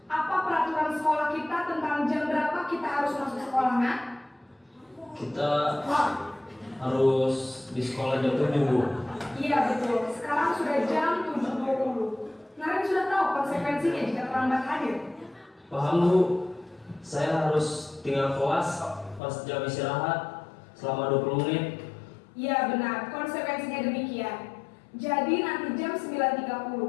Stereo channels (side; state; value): right; drops out; at 19.2 s